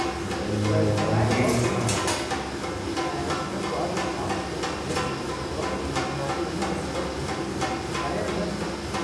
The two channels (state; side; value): identical; both; correlation 1.00